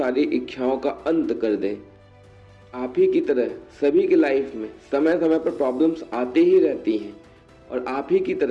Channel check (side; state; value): both; identical; correlation 1.00